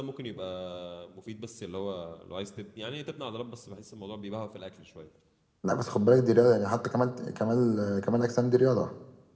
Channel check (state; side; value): identical; both; correlation 1.00